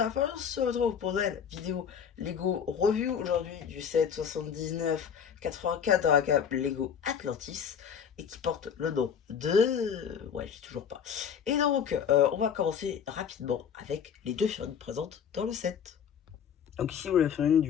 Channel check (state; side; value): quieter; right; 7.6 dB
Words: la fin, on se retrouve pour une vidéo Lego Review aujourd'hui du set 79-84 dans la gamme Lego Atlantis et qui porte le nom de... Ouais, j'ai toujours pas. Et donc, on va commencer rapidement avec les deux figurines présentes dans le set. Donc ici, vous la figurine